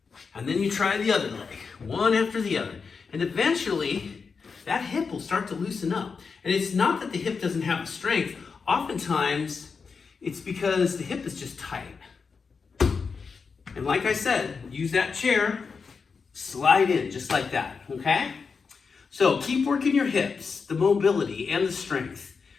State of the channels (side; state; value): right; quieter; 5.3 dB